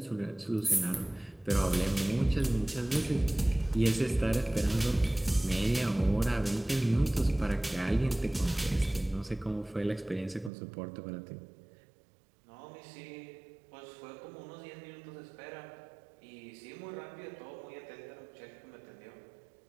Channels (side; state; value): left; drops out; at 10.5 s